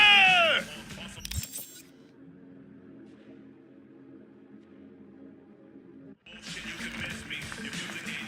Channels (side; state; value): both; identical; correlation 1.00